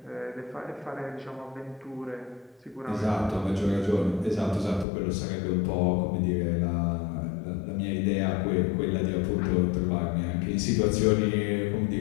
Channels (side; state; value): right; drops out; at 4.9 s